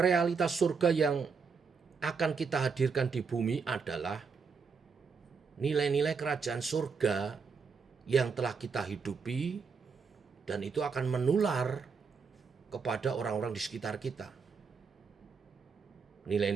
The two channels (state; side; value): quieter; left; 5.4 dB